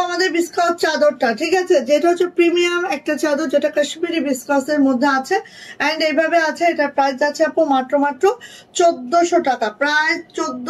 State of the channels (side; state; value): both; identical; correlation 1.00